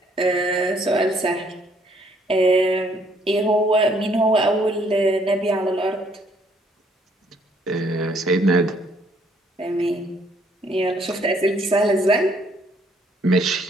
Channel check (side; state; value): both; normal; correlation 0.66